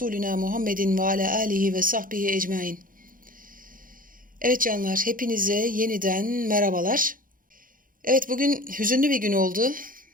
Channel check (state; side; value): late; left; 0.40 ms